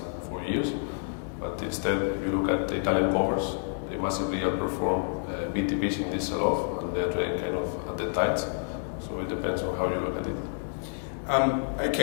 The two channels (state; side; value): silent; right; digital silence